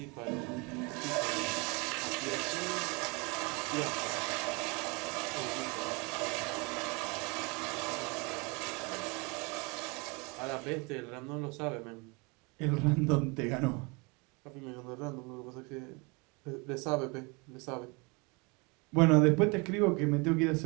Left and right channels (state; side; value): quieter; left; 29.3 dB